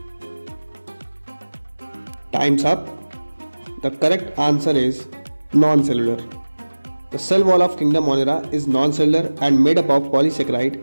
Time's up. The correct answer is non-cellular. The cell wall of Kingdom Monera is non-cellular and made up of polysaccharide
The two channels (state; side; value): inverted; both; correlation -1.00